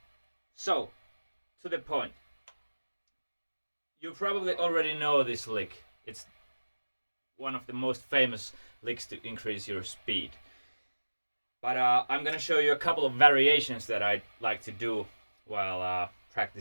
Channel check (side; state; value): both; inverted; correlation -1.00